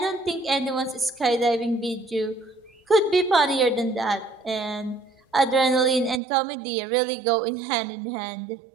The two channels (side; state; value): left; drops out; at 6.2 s